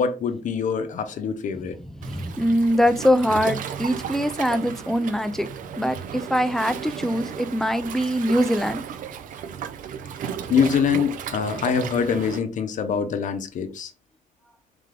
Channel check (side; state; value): both; normal; correlation 0.74